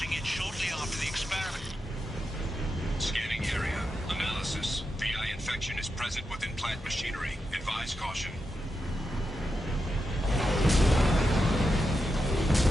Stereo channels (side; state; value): both; normal; correlation 0.87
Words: it shortly after the experiment. Scanning area. Analysis. VI infection is present within plant machinery. Advise caution.